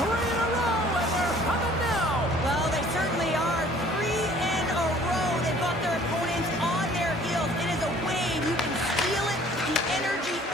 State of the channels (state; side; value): normal; both; correlation 0.54